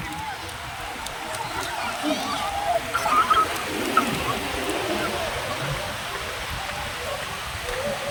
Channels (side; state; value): both; identical; correlation 1.00